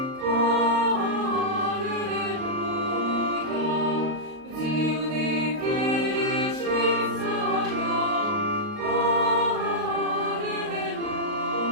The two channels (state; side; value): late; left; 38 ms